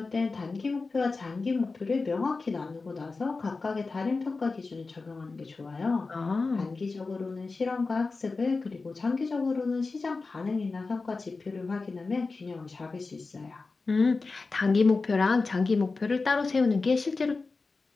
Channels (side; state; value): right; quieter; 4.0 dB